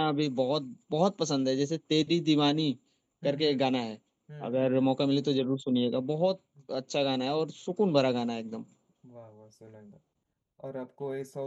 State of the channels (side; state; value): both; identical; correlation 1.00